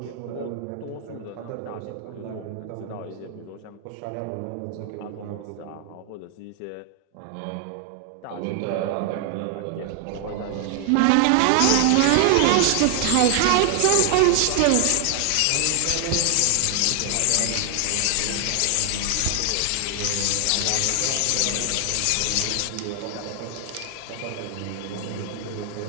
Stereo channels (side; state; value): both; different; correlation 0.00